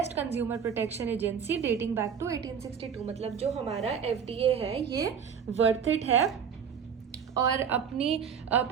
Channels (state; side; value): quieter; left; 7.2 dB